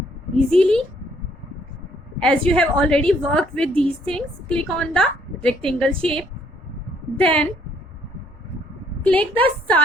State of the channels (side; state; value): both; normal; correlation 0.66